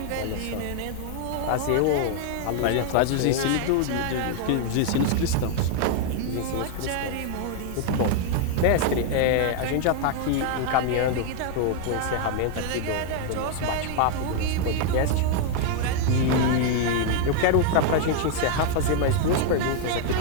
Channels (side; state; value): both; different; correlation 0.00